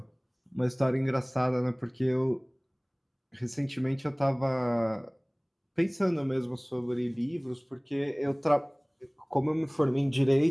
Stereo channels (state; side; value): identical; both; correlation 1.00